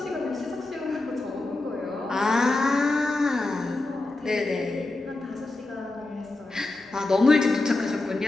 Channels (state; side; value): quieter; right; 3.0 dB